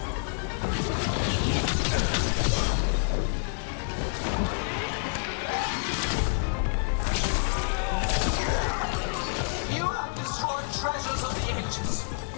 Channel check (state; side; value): silent; right; digital silence